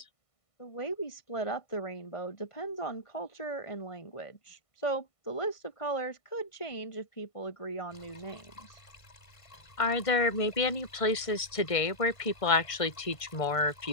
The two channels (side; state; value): right; late; 1.5 ms